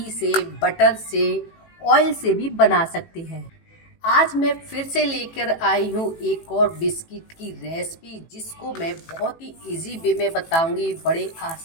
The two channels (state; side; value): late; right; 18 ms